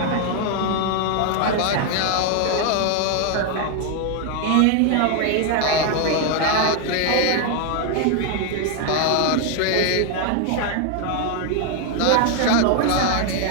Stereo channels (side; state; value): both; different; correlation 0.00